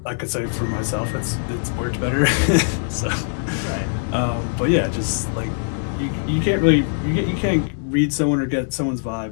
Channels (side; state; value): right; silent; digital silence